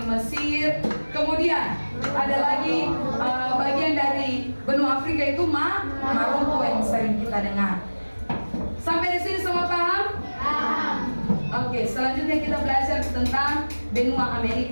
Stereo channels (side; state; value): both; inverted; correlation -1.00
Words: Mesir. Kemudian ada lagi bagian dari benua Afrika itu Maroko yang sering kita dengar. Sampai di sini semua paham? Oke, selanjutnya kita belajar tentang benua